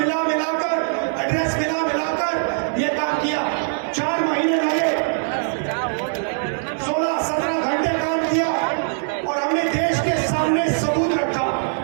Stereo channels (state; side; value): silent; left; digital silence